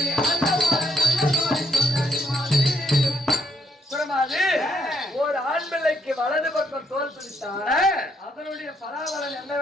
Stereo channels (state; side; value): normal; both; correlation 0.73